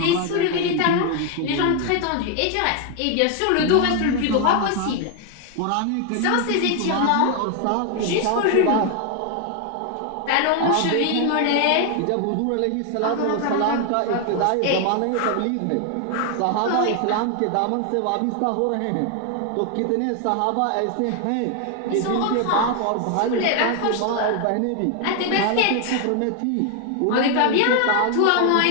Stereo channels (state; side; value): different; both; correlation 0.00